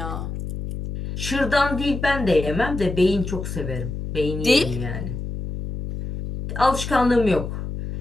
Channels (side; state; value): left; noise; hum, 6 dB below the sound